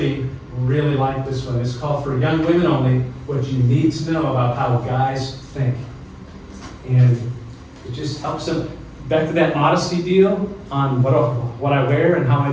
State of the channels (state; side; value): identical; both; correlation 1.00